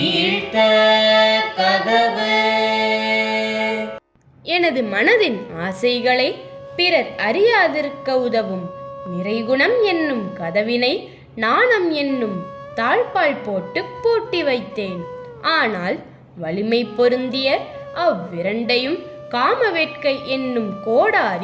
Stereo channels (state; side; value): identical; both; correlation 1.00